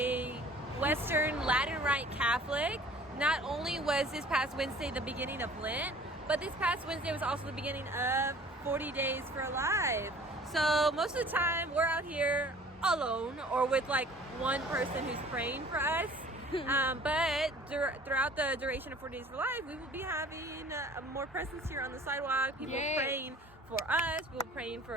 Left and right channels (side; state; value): both; normal; correlation 0.49